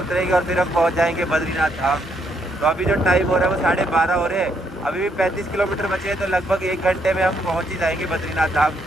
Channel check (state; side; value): normal; both; correlation 0.73